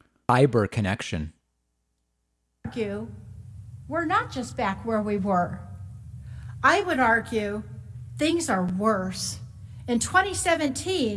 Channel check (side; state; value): both; identical; correlation 1.00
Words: Fiber connection. We're not just back where we were. I would argue things are worse. In